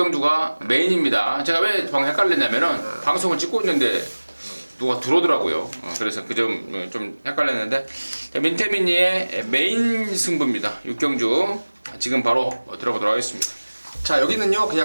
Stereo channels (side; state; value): both; inverted; correlation -1.00